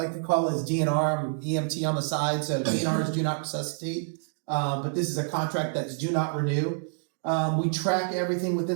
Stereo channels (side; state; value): left; silent; digital silence